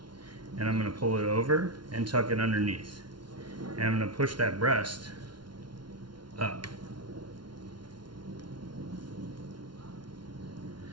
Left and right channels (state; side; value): late; left; 0.71 ms